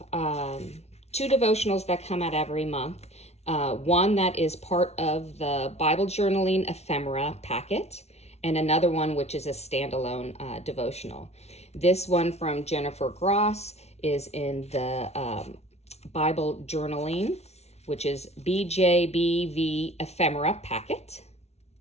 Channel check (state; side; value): late; right; 0.31 ms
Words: 2 devotionals that come out every month. One that is part of the Bible journaling ephemera packet, and another one which is a standalone devotional. This one from Jennifer Gross is in the Bible journaling, which is BJBV ephemera packet